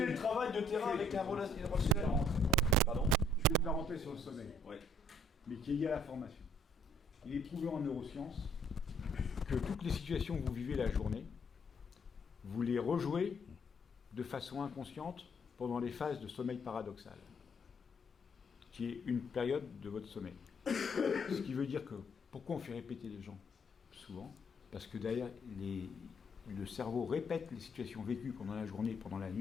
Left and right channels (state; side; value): normal; both; correlation 0.64